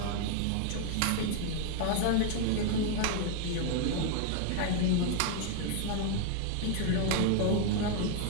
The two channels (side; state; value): both; different; correlation 0.00